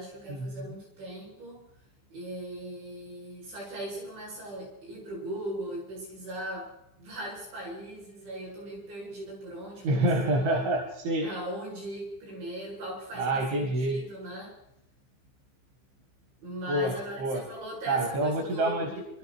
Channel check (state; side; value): late; left; 15 ms